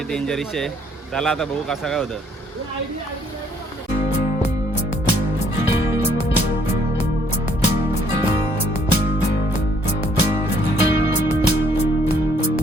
डेंजरिश आहे। चला आता बघू कसं काय होतं।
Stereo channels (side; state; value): both; normal; correlation 0.65